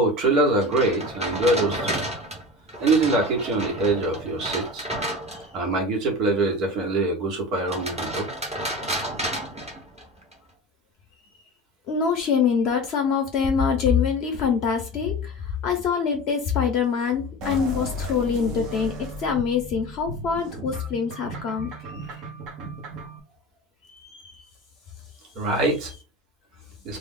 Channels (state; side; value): normal; both; correlation 0.31